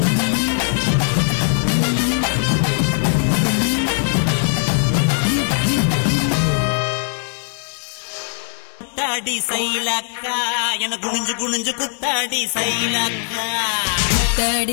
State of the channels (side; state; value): right; silent; digital silence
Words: குத்தாடி சைலக்கா என குனிஞ்சு குனிஞ்சு குத்தாடி சைலக்கா